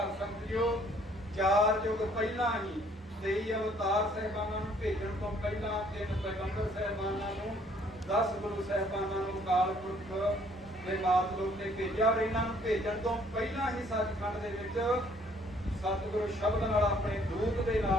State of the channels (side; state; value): both; normal; correlation 0.62